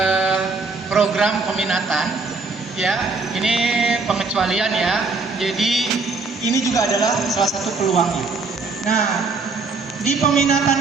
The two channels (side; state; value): left; quieter; 4.0 dB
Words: program peminatan ya. Ini pengecualian ya. Jadi ini juga adalah salah satu peluangnya. Nah, di peminatan